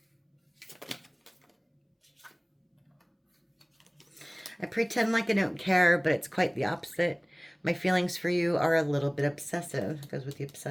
I pretend like I don't care, but it's quite the opposite. My feelings for you are a little bit obsessive. It goes with the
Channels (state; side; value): identical; both; correlation 1.00